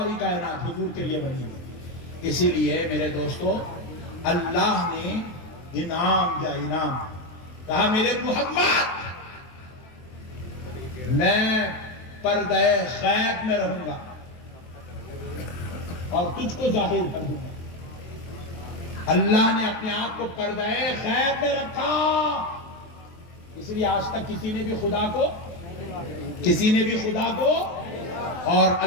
کائنات حضور کے لیے بنی ہوئی. اسی لیے میرے دوستو اللہ نے انعام دیا، انعام. کہا میرے محمد میں پردہ غیب میں رہوں گا اور تجھ کو ظاہر کر دوں گا. اللہ نے اپنے آپ کو پردہ غیب میں رکھا. اس لیے آج تک کسی نے بھی خدا کو اور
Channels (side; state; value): right; late; 23 ms